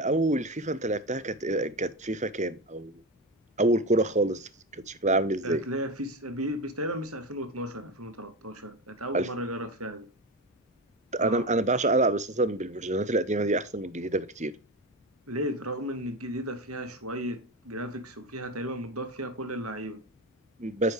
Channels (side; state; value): both; normal; correlation 0.21